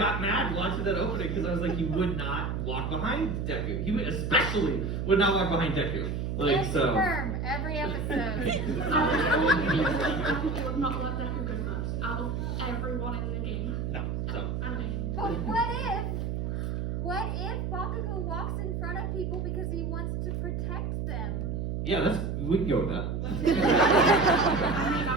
mad watching that opening because I was like, he would not walk behind Deku. He especially would not walk behind Deku. Confirm every episode. Bakugo would not let Deku go first out of everyone in the game. No. So. But what if Bakugo walks in front of people because he wants to protect them? Yeah, we can go with that.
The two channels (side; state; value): right; noise; hum, 2 dB below the sound